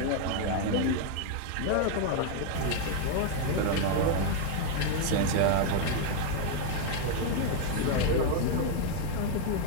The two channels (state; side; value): different; both; correlation 0.00